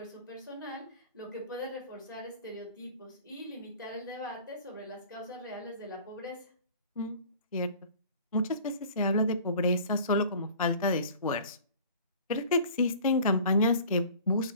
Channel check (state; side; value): inverted; both; correlation -0.46